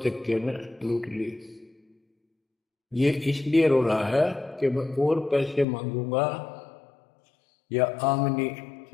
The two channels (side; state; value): right; drops out; at 5.7 s